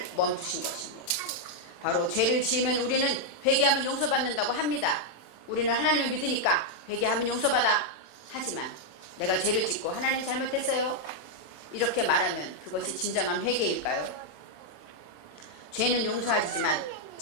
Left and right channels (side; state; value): right; late; 27 ms